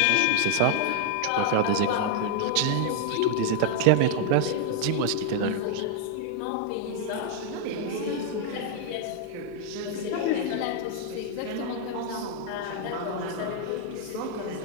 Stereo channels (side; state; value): both; different; correlation 0.00